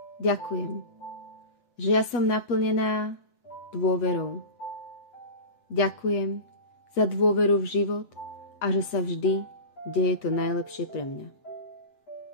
Ďakujem, že ja som naplnená dôverou. Ďakujem za dôveru v život a že sa vždy deje to najlepšie pre mňa.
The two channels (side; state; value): right; late; 8.0 ms